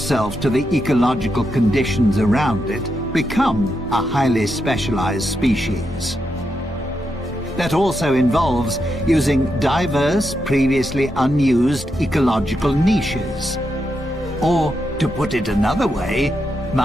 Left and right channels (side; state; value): both; normal; correlation 0.84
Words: to the ecological conditions around it, become a highly specialized species. That also involves using diverse, previously unused ecological niches. Or, to put it another way,